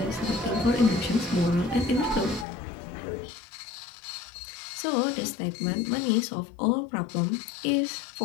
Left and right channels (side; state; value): right; drops out; at 2.5 s